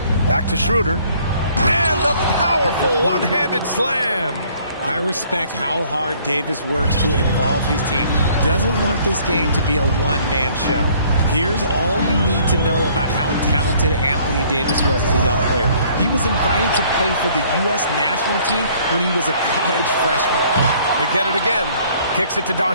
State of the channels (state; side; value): inverted; both; correlation -0.59